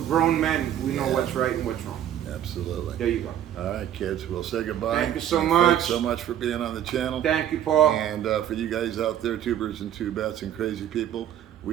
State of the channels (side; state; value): left; quieter; 10.8 dB